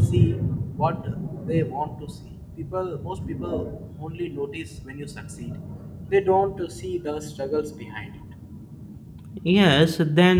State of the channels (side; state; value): both; identical; correlation 1.00